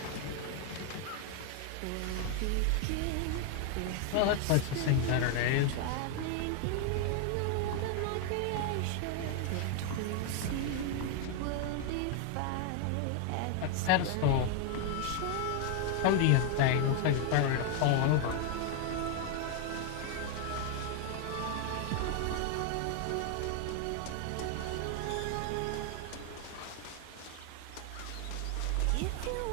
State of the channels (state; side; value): different; both; correlation 0.00